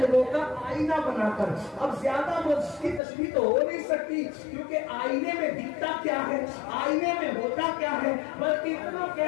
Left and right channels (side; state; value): right; drops out; at 3.0 s